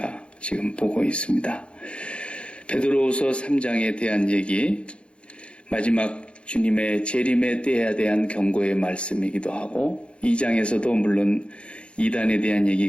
지금 보고 있습니다. 베드로후서 3장에 대한 얘기, 마지막 주님의 재림의 때에 대한 경고의 말씀이기도 하고 2장에서도 물론 이단에 대한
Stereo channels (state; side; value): late; right; 0.058 ms